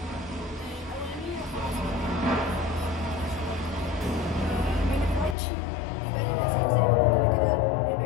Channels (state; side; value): drops out; right; at 5.4 s